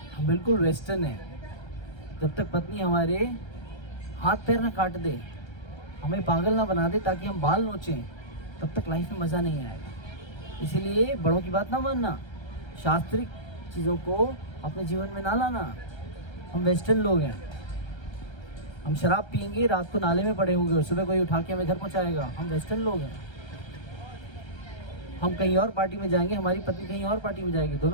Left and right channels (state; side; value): late; right; 1.3 ms